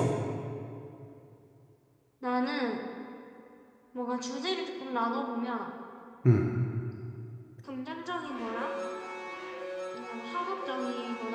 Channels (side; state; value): both; identical; correlation 1.00